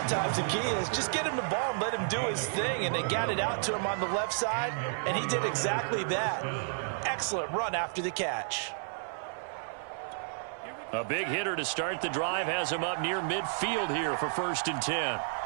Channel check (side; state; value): left; silent; 57 dB below the other